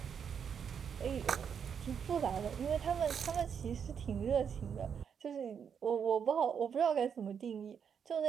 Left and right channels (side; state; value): left; quieter; 7.4 dB